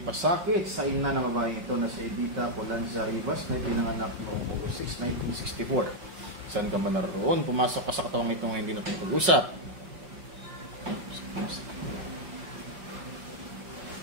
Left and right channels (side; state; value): left; late; 5.5 ms